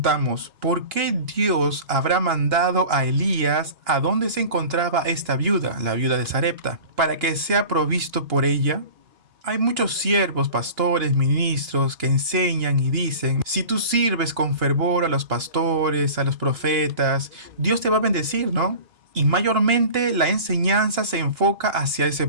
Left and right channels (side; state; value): left; late; 2.8 ms